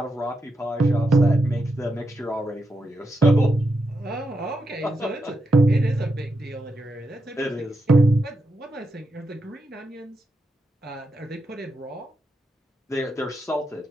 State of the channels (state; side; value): normal; both; correlation 0.85